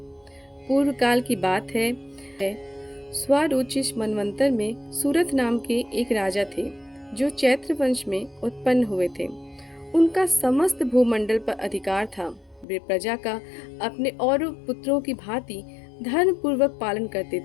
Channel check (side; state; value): right; drops out; at 12.7 s